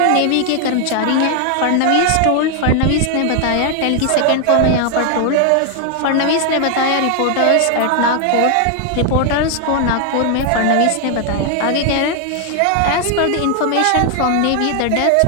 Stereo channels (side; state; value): both; different; correlation 0.00